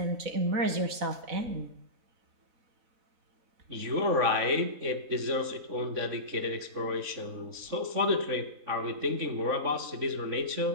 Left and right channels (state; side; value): late; left; 4.0 ms